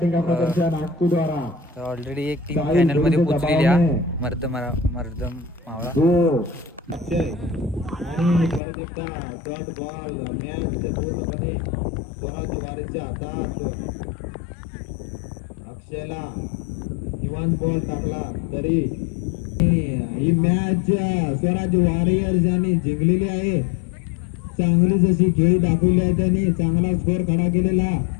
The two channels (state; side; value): drops out; right; at 8.6 s